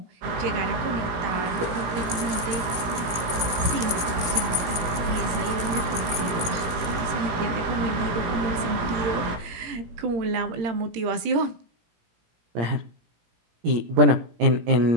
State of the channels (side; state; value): left; late; 17 ms